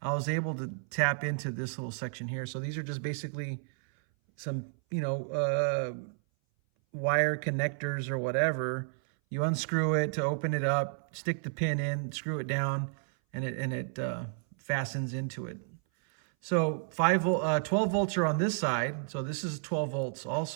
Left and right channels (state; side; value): silent; left; 57 dB below the other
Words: I was able to tap into this little section here. So these are just basically some, wire connectors or whatever. You unscrew it to open it up, stick the pin in, screw it down, and it fastens into it. So 12 volts are on this side. So this is 12 volts